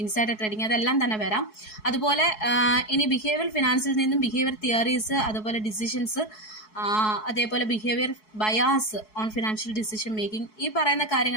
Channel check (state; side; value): late; right; 4.7 ms